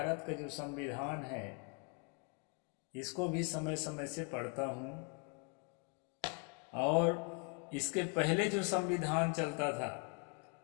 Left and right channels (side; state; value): right; quieter; 34.2 dB